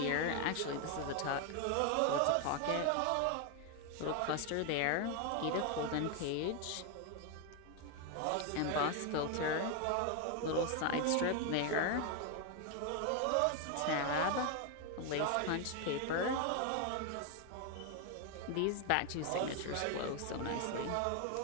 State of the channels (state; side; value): different; both; correlation 0.01